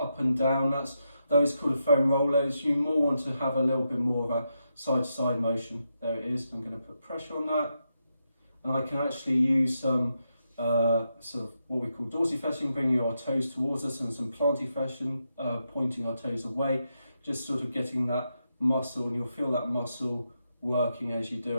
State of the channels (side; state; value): both; inverted; correlation -0.84